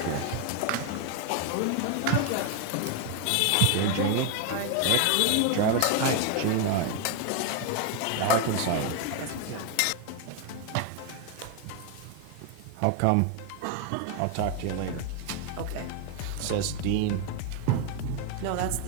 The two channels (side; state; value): both; different; correlation 0.01